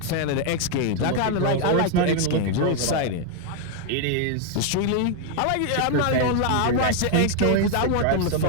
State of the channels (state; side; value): different; both; correlation 0.00